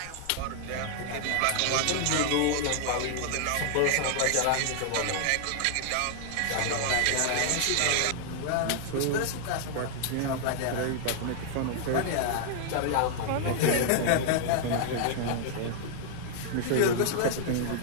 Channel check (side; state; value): both; different; correlation 0.00